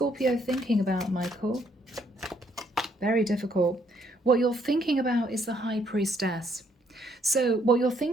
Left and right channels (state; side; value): normal; both; correlation 0.69